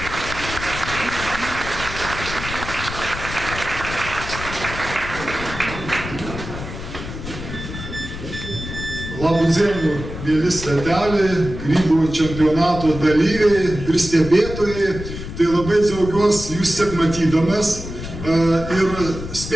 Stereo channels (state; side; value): noise; left; rumble, 9 dB below the sound